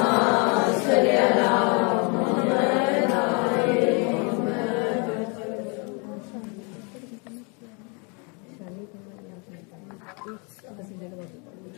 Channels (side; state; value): right; quieter; 33.7 dB